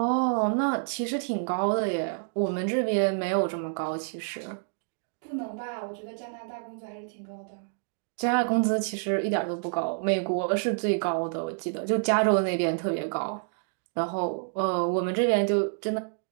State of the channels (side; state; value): left; silent; digital silence